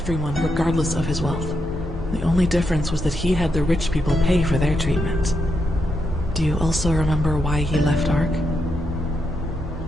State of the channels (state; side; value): normal; both; correlation 0.82